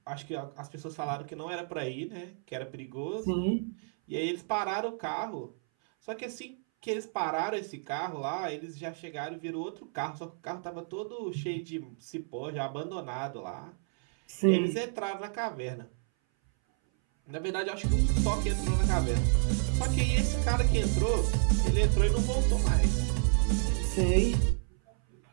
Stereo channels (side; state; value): left; silent; 57 dB below the other